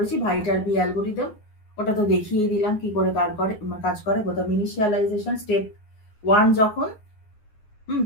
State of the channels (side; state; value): right; late; 9.5 ms